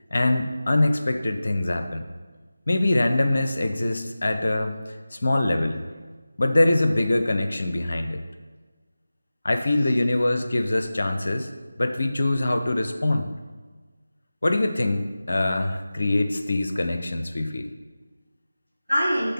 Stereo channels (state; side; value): inverted; both; correlation -0.96